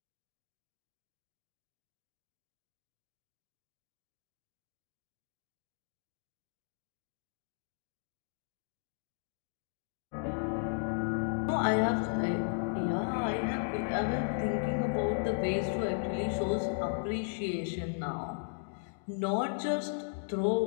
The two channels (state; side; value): silent; right; digital silence